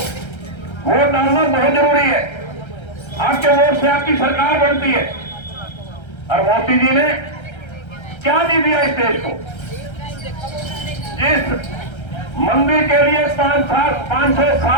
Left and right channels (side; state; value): right; late; 1.3 ms